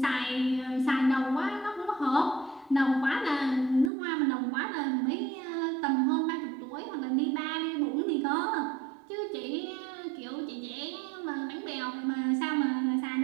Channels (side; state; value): left; drops out; at 3.9 s